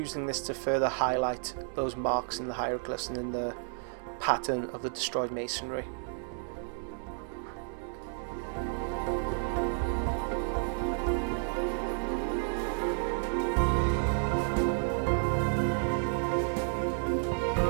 this to further highlight those marks in the hieroglyphs and in the pattern of the destroyed masonry.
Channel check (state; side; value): silent; left; 57 dB below the other